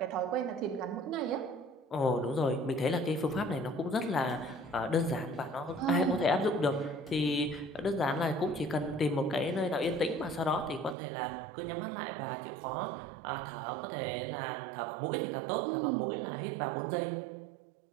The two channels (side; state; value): left; drops out; at 11.0 s